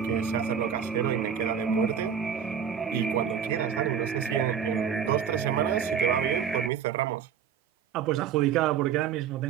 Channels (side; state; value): left; quieter; 7.8 dB